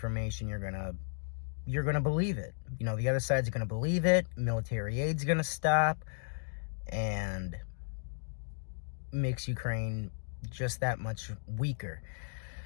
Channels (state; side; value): silent; right; digital silence